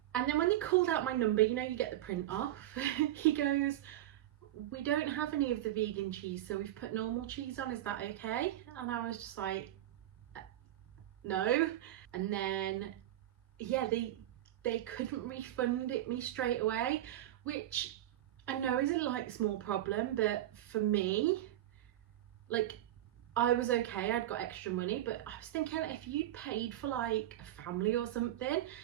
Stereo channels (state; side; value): quieter; left; 13.5 dB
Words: And then when they called out my number, you know, you get the print off, he goes, we don't have any of the vegan cheese, so we've put normal cheese on, is that okay? And I was just like, no. And then, yeah, they couldn't refund it me straight away, which I know is a like small problem, but for me, like, I was okay, I'd got extra money, but I was thinking if you'd paid for like a family or something,